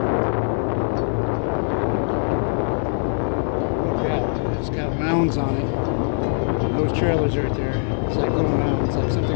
Mounds on it. And those trailers right there, it's like little mounds, like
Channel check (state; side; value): silent; right; digital silence